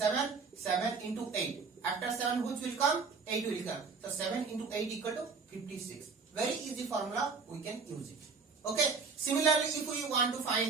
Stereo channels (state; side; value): quieter; left; 4.8 dB